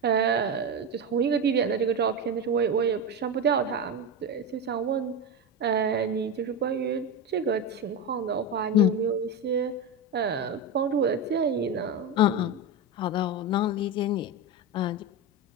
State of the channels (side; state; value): both; normal; correlation 0.16